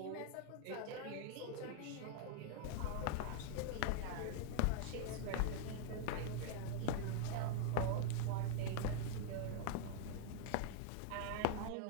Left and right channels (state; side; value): different; both; correlation -0.01